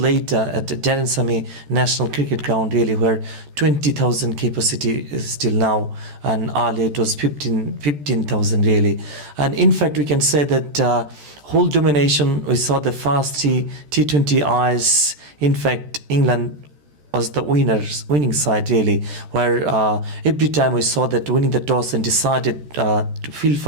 at the Darren Sammy National Cricket Ground, really, where 20,000 capacity is still now, and earlier it was 15,000 really. And in fact, we can say that whole domination, we saw the first T20 eyes. In fact, England was the winning side, really, where every time we saw that winning the toss and decided to field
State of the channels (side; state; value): left; late; 14 ms